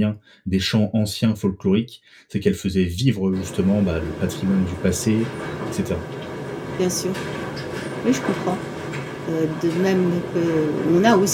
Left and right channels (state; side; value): identical; both; correlation 1.00